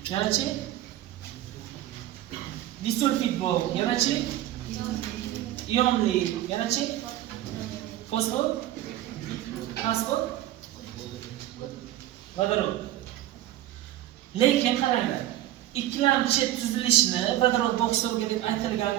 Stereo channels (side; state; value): left; quieter; 13.8 dB